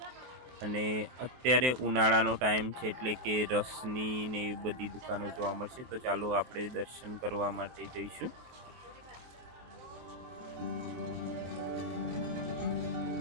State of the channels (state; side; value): late; left; 23 ms